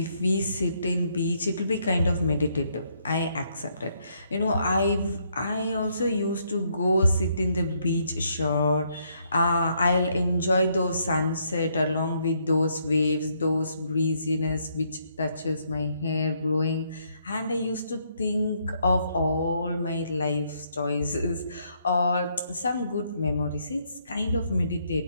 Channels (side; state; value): both; inverted; correlation -0.72